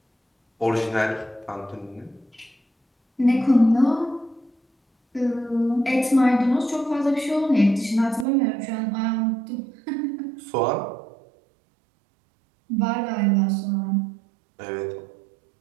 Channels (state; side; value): drops out; left; at 8.2 s